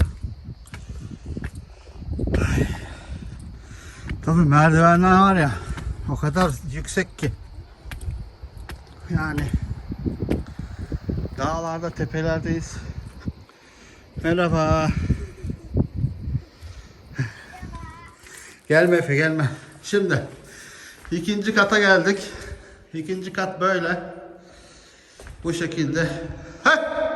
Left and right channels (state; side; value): identical; both; correlation 1.00